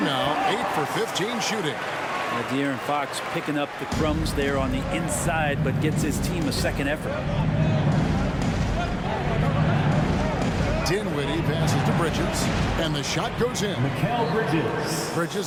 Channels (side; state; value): both; identical; correlation 1.00